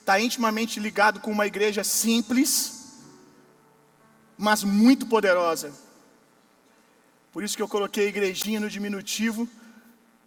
intimamente ligado com uma igreja simples, mas muito poderosa. Por isso que eu coloquei igrejinha no diminutivo,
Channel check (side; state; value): both; identical; correlation 1.00